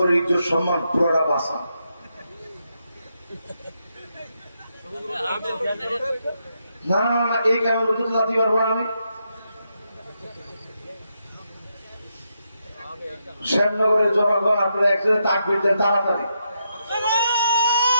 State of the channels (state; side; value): inverted; both; correlation -0.82